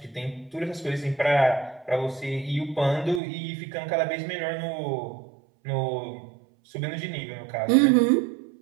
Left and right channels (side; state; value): left; drops out; at 3.2 s